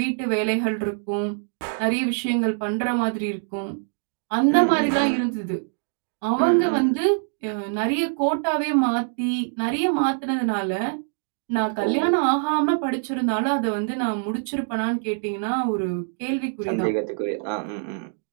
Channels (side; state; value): left; silent; digital silence